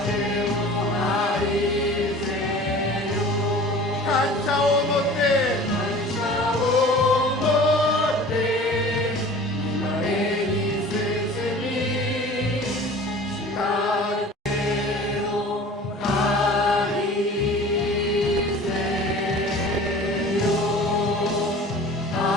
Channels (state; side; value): normal; both; correlation 0.42